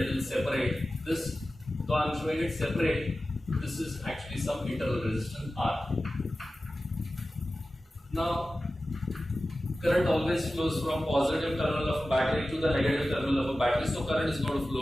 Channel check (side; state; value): both; normal; correlation 0.95